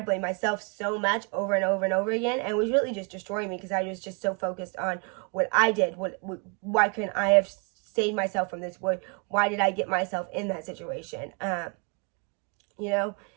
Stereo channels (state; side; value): quieter; left; 35.4 dB